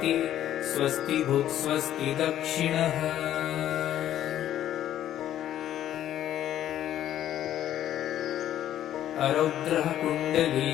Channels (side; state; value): right; quieter; 11.7 dB